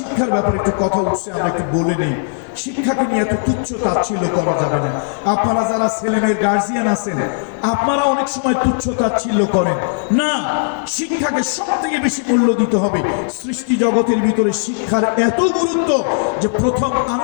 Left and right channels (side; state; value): right; silent; digital silence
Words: ব্যাপারে একটু কথা উঠছে, আমরা একটু বলে নেই। শিক্ষাকে নিয়ে এত তুচ্ছ তাচ্ছিল্য করা যাবে না। আপনারা যারা ছেলেমেয়ের গার্জিয়ান আছেন, আপনারা অনেক সময় তুচ্ছ তাচ্ছিল্য করেন না। শিক্ষাকে সব থেকে বেশি মূল্য দিতে হবে। সৃষ্টি জগতের ভিতরে শিক্ষার এত গুরুত্ব যে প্রথম